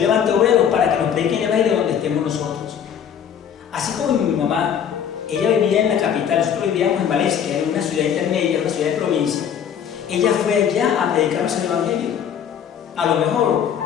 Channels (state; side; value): quieter; right; 8.5 dB